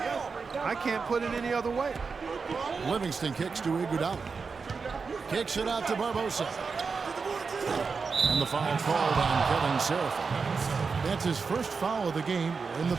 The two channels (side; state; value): left; quieter; 5.0 dB